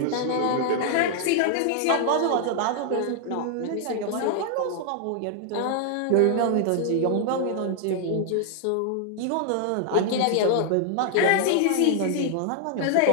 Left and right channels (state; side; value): different; both; correlation 0.00